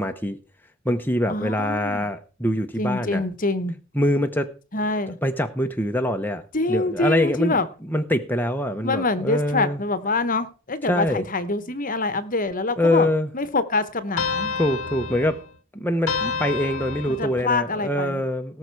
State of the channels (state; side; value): normal; both; correlation 0.45